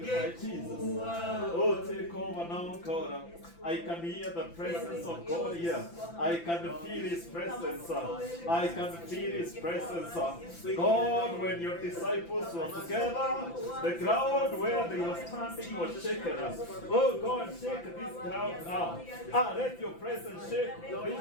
now, Jesus. Oh, take over now, God. I can hear the presence of God here. I can feel His presence. I can feel His presence. God, when your disciples were together, the ground where they were standing was shaken. Oh God, shake this ground now. Let your presence shake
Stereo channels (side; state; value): right; late; 5.9 ms